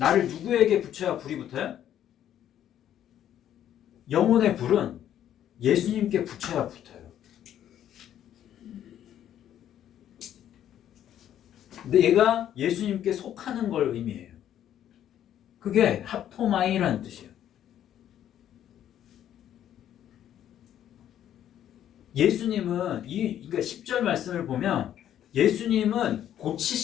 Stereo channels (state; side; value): quieter; right; 10.8 dB